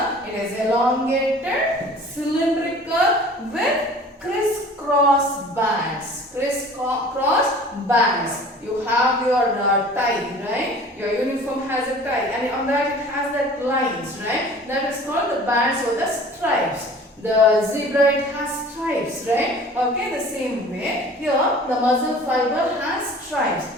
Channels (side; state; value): both; normal; correlation 0.45